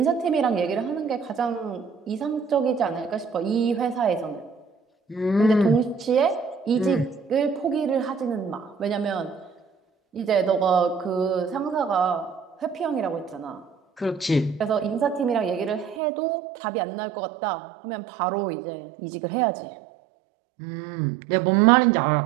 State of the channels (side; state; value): left; drops out; at 16.0 s